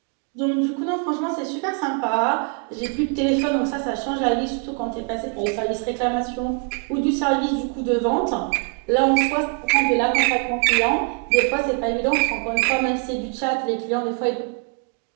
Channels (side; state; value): left; quieter; 34.7 dB